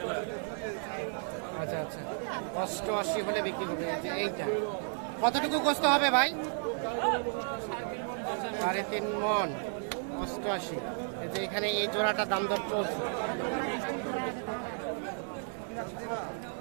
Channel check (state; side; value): silent; left; 56 dB below the other